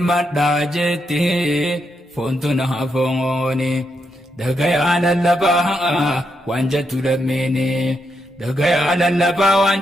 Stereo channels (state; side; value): normal; both; correlation 0.82